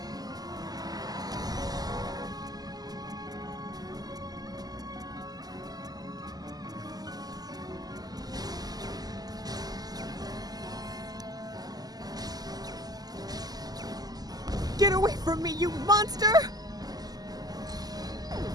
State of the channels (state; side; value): late; left; 0.19 ms